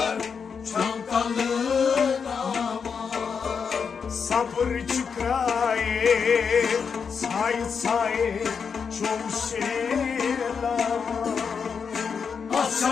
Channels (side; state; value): right; quieter; 6.2 dB